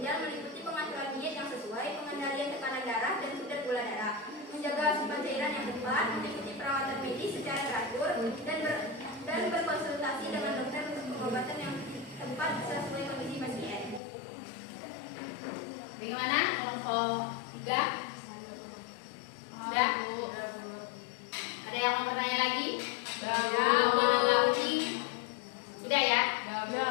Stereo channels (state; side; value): drops out; right; at 14.0 s